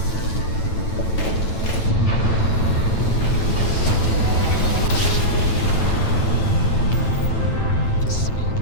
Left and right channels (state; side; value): late; right; 9.0 ms